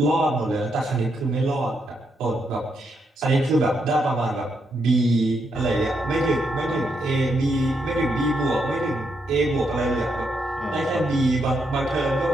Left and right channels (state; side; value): normal; both; correlation 0.79